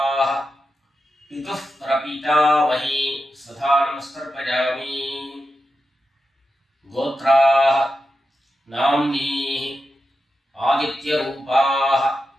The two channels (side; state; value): both; normal; correlation 0.89